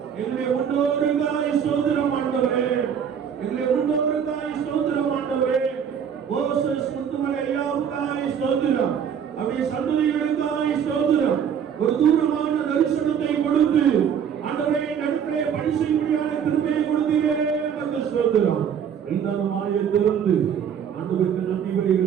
எங்களுடைய முன்னோருக்காய் ஸ்தோத்திரம் ஆண்டவரே, எங்களுடைய முன்னோருக்காய் ஸ்தோத்திரம் ஆண்டவரே. மோசஸ் முத்துமலை ஐயாவுக்காய் ஸ்தோத்திரம். அவருடைய சந்ததிகளுக்காய் ஸ்தோத்திரம். ஒரு தூரமான தரிசனத்தை கொடுத்து ஆண்டவரே நடுவே பணி செய்யும்படியான கிருபையை கொடுத்தீரே, நமக்கு ஸ்தோத்திரம். எல்லாருமாய திறந்து ஆண்டவருக்கு நன்றி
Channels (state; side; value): quieter; left; 8.0 dB